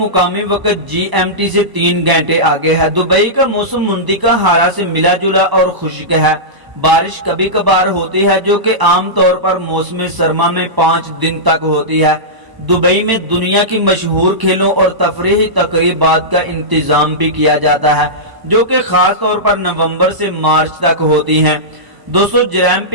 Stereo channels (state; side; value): late; left; 1.0 ms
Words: وقت GMT سے 3 گھنٹے آگے ہے۔ دبئی کا موسم منطقہ حارہ سے ملا جلا اور خشک ہے۔ بارش کبھی کبھار ہوتی ہے جو کہ عام طور پر موسم سرما میں 5 دن تک ہوتی ہے۔ دبئی میں دنیا کی مشہور کھیلوں اور تفریحی تقریبات کا انتظام بھی کیا جاتا ہے جو کہ خاص طور پر نومبر سے مارچ تک ہوتی ہیں۔ دوستو جرائم